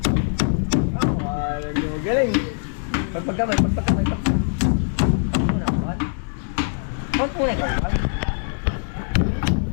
Alam niyo, galing. Pagpagkamay. Muna, kawan. Kawan muna, kawan.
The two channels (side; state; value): right; silent; digital silence